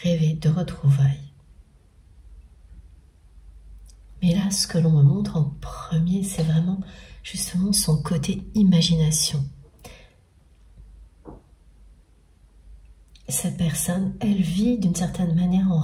rêver de retrouvailles. Mais là, ce que l'on me montre en premier, c'est vraiment justement son côté imagination. Cette personne, elle vit d'une certaine manière en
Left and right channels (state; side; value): identical; both; correlation 1.00